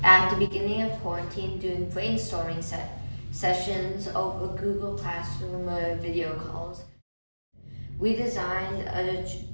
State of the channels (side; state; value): both; inverted; correlation -1.00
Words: at the beginning of quarantine doing brainstorming sessions over Google Classroom video calls. We designed